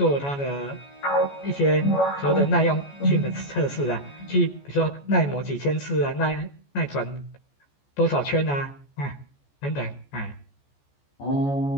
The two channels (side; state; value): right; late; 14 ms